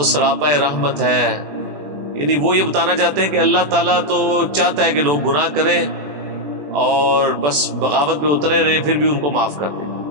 سراپا رحمت ہے، یعنی وہ یہ بتانا چاہتے ہیں کہ اللہ تعالیٰ تو چاہتا ہے کہ لوگ گناہ کریں اور بس بغاوت پہ اترے رہے پھر بھی ان کو معاف کر دیں۔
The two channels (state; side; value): late; left; 21 ms